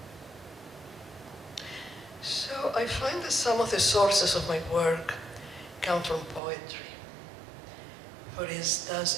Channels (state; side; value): drops out; left; at 6.4 s